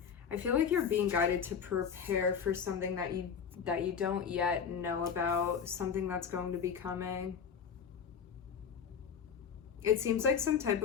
I feel like you're being guided to prepare for something that you don't yet know about, something that's going to be coming. It seems like some type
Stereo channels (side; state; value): right; quieter; 7.0 dB